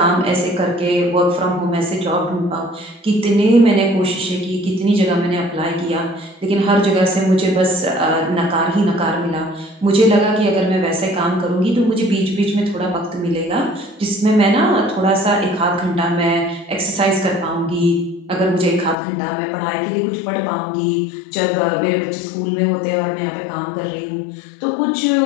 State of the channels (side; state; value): right; drops out; at 18.9 s